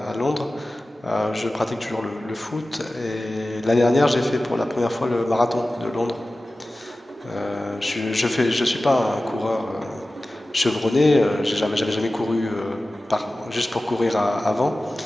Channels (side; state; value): both; normal; correlation 0.96